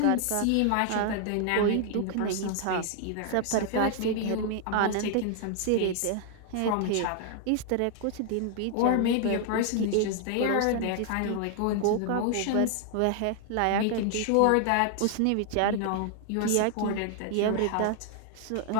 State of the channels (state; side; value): different; both; correlation 0.00